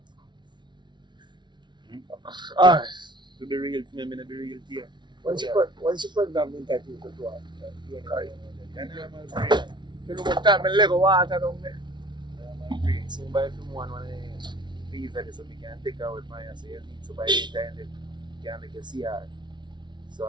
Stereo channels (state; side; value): late; left; 0.22 ms